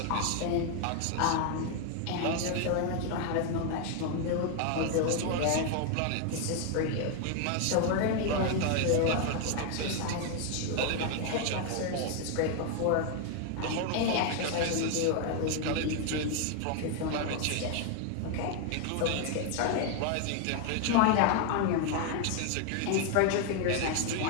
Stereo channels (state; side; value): different; both; correlation 0.01